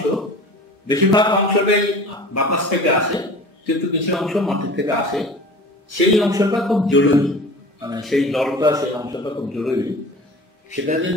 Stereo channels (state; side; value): normal; both; correlation 0.39